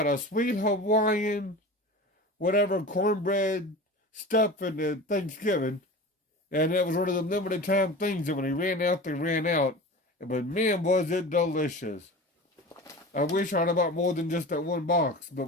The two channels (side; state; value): both; normal; correlation 0.33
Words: a Sweet Hawaiian, whatever, cornbread stuff in the Thanksgiving. And it was one of the limited time things that when they ran out, they ran out. But man, was it delicious. I wish I'd have bought more than just that one box, but